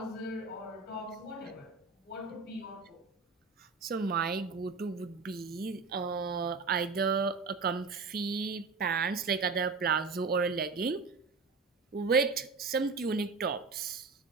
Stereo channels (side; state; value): left; quieter; 4.5 dB